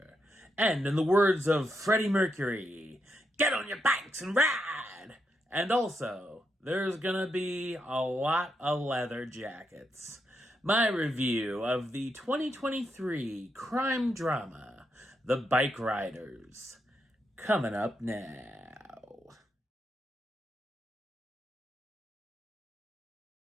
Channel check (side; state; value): both; normal; correlation 0.82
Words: And in the words of Freddie Mercury, get on your bikes and ride! And also, there's gonna be a lot of leather jackets. My review of the 2023 crime drama, The Bikeriders, coming up now.